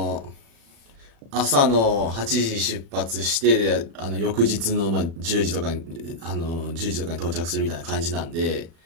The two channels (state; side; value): late; left; 36 ms